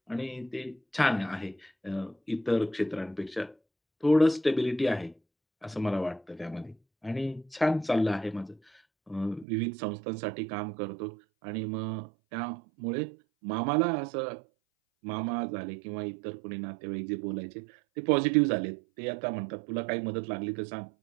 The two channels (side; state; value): left; drops out; at 9.5 s